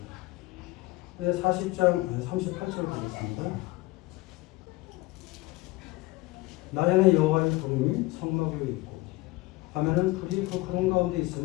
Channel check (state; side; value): quieter; right; 20.1 dB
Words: 40장 38절 보겠습니다. 낮에는 여호와의 구름이 성막 위에 있고 밤에는 불이 그 구름 가운데